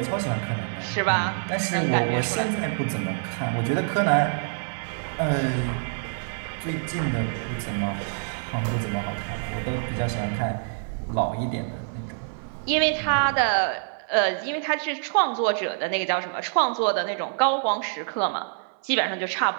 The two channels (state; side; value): silent; left; 58 dB below the other